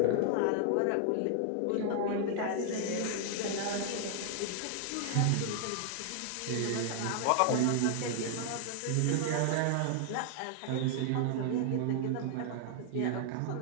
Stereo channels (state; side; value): different; both; correlation 0.00